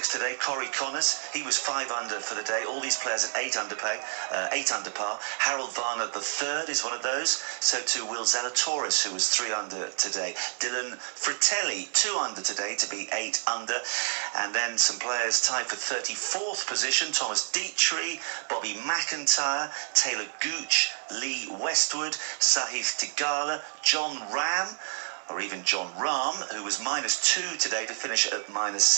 today. Corey Connors, he was 5 under for the day. All these players at 8 under par. Harold Varner, the third, is one of those. So too Will Zalatoris, who was 3 under today. Dylan Fratelli, 2 under today to be 8 under. And then some players tied for 34th position. Thomas Dietrich, Bobby McIntyre, Taylor Gooch, Lee Westwood, Sahith Theegala, John Ram, or even John Rahm, who was -2 today to finish at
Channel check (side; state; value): left; silent; 59 dB below the other